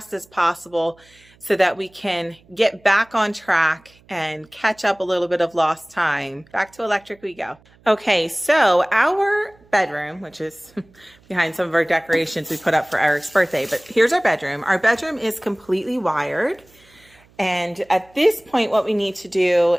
as possible so that we can get back on track and catch up a little bit of lost time. Back to electric we go. Okay, so our bedroom, which is behind some of our decorations we put up for Eric's birthday, but here's our bedroom. Our bedroom is completely wired. And at this point, what we need to do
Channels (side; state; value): right; noise; hum, 30 dB below the sound